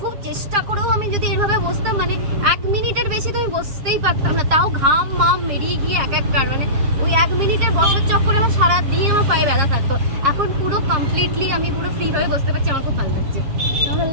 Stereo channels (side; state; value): left; late; 7.3 ms